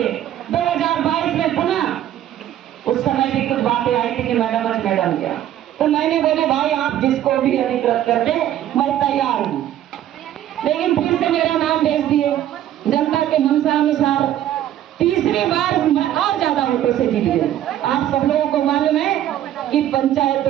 2022 में पुनः उस समय भी कुछ बातें आई थी कि मैडम क्या, तो मैंने बोले भाई आप जिसको भी अधिकृत कर दे मैं तैयार हूँ। लेकिन फिर से मेरा नाम भेज दिए जनता के मनसा अनुसार, तीसरी बार मैं और ज्यादा वोटों से जीत गई। आप सब लोगों को मालूम है कि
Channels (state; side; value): quieter; left; 11.9 dB